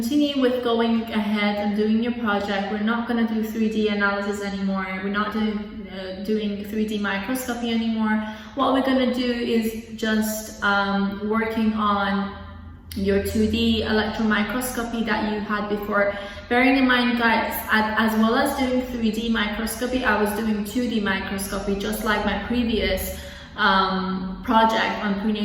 with going ahead and doing your project. We're not going to do 3D analysis anymore. We're not doing 3D microscopy anymore. What we're going to do is just working on your 2D electron microscopy that you had before. Bearing in mind, guys, as well as doing 3D microscopy, I was doing 2D microscopy, just like my previous project on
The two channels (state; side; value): identical; both; correlation 1.00